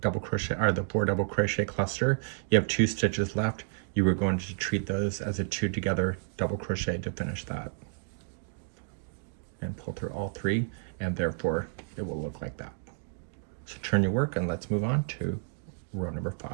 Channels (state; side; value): silent; left; digital silence